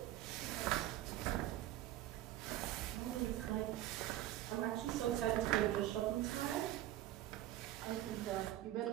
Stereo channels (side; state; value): left; quieter; 14.0 dB